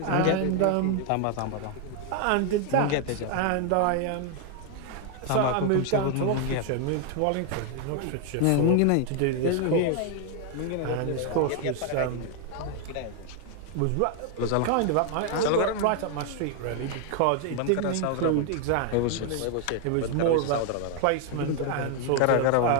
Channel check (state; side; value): different; both; correlation 0.01